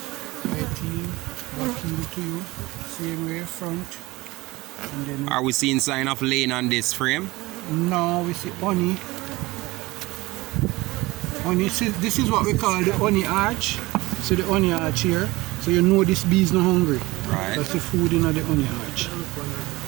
18, back into you. Same way, front. And then Are we seeing sign of lane on this frame? now we see honey. Honey, this is what we call the honey arch. So the honey arch here. So you know this bee is not hungry. Right. That's the food in the honey arch.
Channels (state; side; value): quieter; left; 20.9 dB